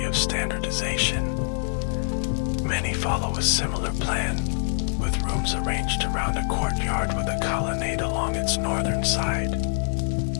of standardization. Many follow a similar plan, with rooms arranged around a courtyard with a colonnade along its northern side.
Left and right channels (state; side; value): silent; right; digital silence